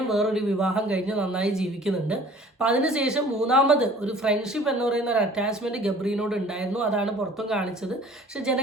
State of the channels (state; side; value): normal; both; correlation 0.49